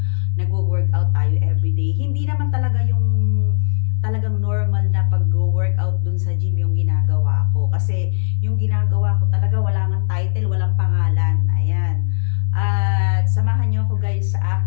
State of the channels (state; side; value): silent; right; digital silence